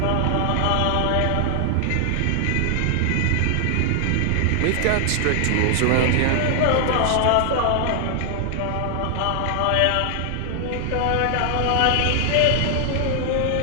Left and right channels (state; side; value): different; both; correlation 0.00